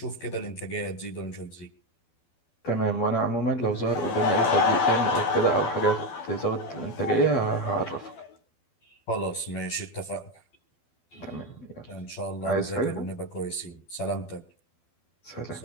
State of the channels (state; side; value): late; right; 12 ms